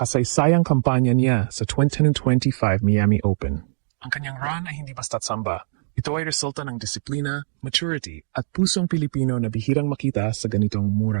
kampanya niya sa 2025 Miami Open. Ang kanyang run ay hindi basta't samba. Ito ay resulta ng disiplina, maturity at pusong Pilipino na bihirang makita sa ganitong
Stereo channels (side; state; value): left; silent; digital silence